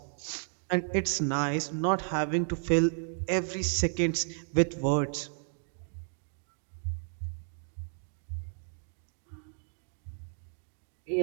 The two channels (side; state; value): left; silent; 56 dB below the other